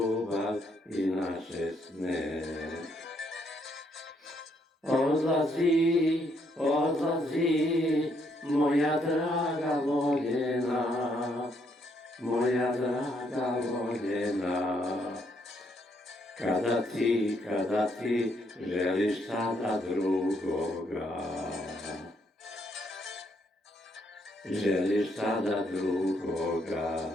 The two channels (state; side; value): normal; both; correlation 0.73